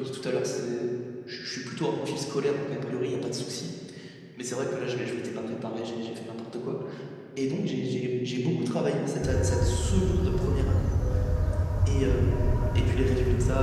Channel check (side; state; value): both; identical; correlation 1.00